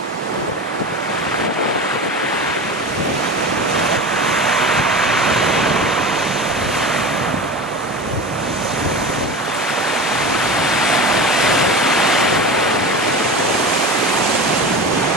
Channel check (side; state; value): both; normal; correlation 0.30